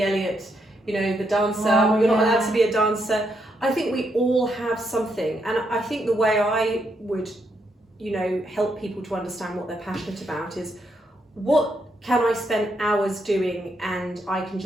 Elliot, the dancer, you're not allowed to be a dancer. I think we all have something, and I think the way I would, help people to understand what they're passionate about is, what can I spend hours doing and I can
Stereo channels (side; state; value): both; normal; correlation 0.78